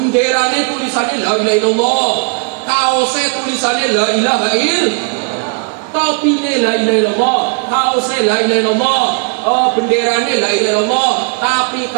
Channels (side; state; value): left; quieter; 38.3 dB